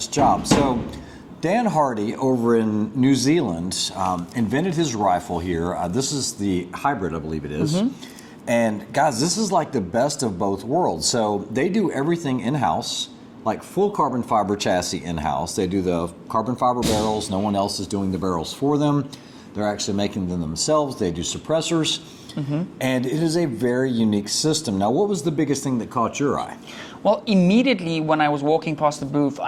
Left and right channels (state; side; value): identical; both; correlation 1.00